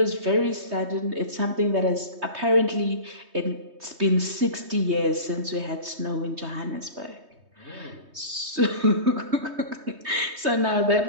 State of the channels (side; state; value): left; late; 3.2 ms